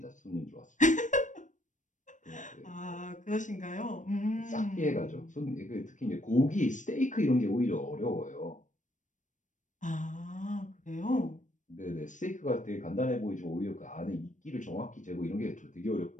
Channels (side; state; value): right; late; 0.37 ms